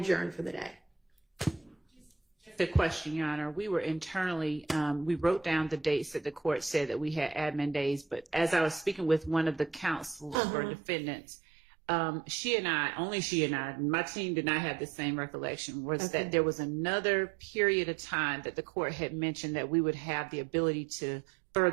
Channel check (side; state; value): left; drops out; at 10.4 s